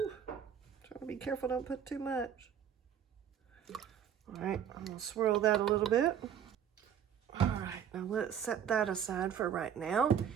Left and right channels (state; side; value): quieter; left; 8.8 dB